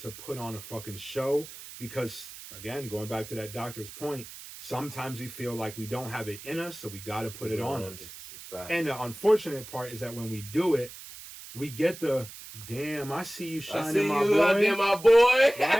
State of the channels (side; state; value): right; noise; hiss, 14 dB below the sound